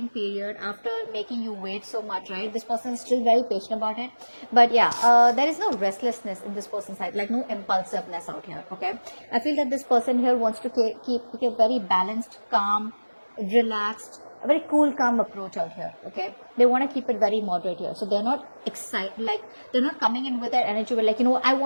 period, after making you wait so much, right, this person is still very patient about it. But yeah, there is no restlessness in this person's side, like no impulsiveness out here. Okay, I feel that this person here wants to keep a very balanced, calm, relaxed, a very cool, calm approach out here. Okay, they want to keep it very moderate here, so they're not excited, like they're not coming in with their energy, like, you know, I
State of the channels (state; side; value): inverted; both; correlation -1.00